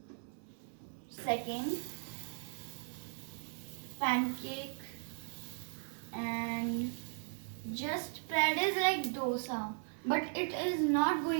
pancake, and just spread is like dosa, but it is not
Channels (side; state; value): left; silent; 53 dB below the other